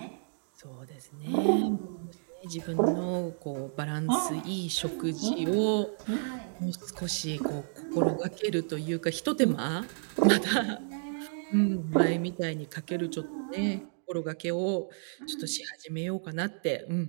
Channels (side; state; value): left; silent; digital silence